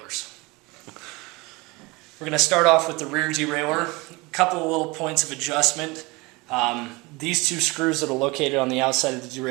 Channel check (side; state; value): left; quieter; 24.5 dB